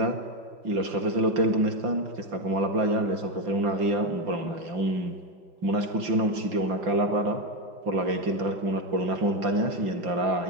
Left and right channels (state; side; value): late; left; 5.7 ms